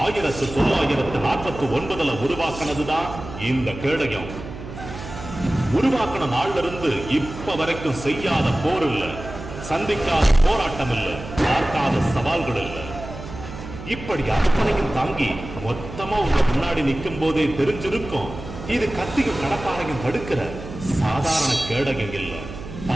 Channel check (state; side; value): noise; right; hum, 12 dB below the sound